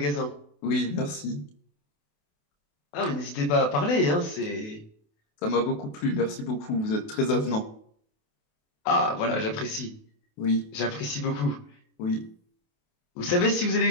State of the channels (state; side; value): late; right; 28 ms